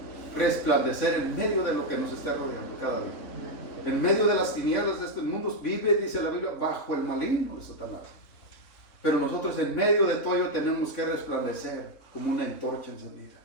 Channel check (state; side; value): late; right; 3.6 ms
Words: resplandecer en medio de lo que nos esté rodeando cada día. En medio de las tinieblas de este mundo vive, dice la Biblia, bajo el maligno de Satanás. Pero nosotros en medio de todo ello tenemos que resplandecer como una antorcha encendida.